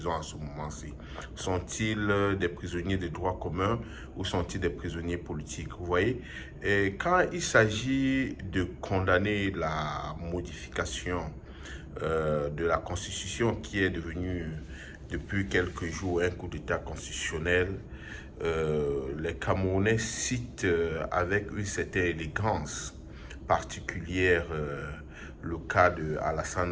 en ce moment-ci. Sont-ils des prisonniers de droit commun ou sont-ils des prisonniers politiques? Vous voyez, et quand il s'agit de condamner la modification de la Constitution qui est devenue depuis quelques jours un coup d'État constitutionnel, les Camerounais citent avec une certaine élégance particulière le cas de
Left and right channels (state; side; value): identical; both; correlation 1.00